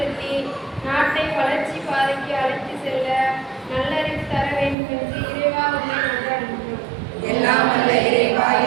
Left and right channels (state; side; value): drops out; left; at 4.8 s